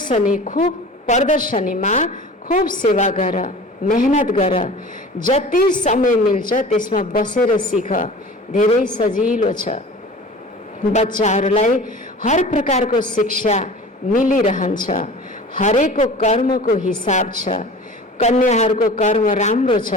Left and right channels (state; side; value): normal; both; correlation 0.40